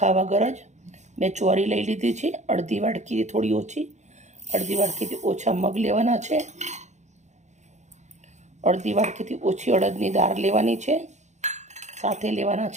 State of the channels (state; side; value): late; left; 0.34 ms